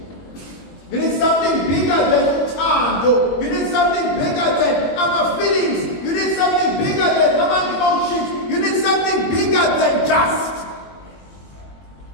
You need something bigger than uthando. You need something bigger than our feelings. You need something bigger than our emotions. You need something bigger than just.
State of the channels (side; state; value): right; late; 21 ms